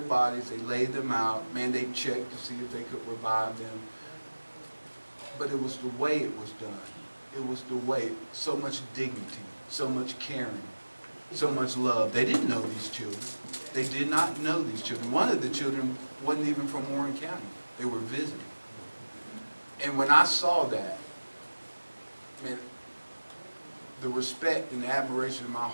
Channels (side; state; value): both; inverted; correlation -1.00